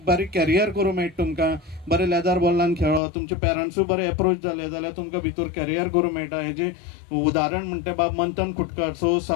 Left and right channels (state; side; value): drops out; right; at 3.0 s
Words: बारीक कॅरियर करूं मेळटा तुमकां, बरें लेदर बॉलान खेळो, तुमचे पेरंट्सूय बरे एप्रोच जाले जाल्यार तुमकां भितर कॅरियर करूं मेळटा. हेजें उदाहरण म्हणटा बाब मंथन खुटकर. सो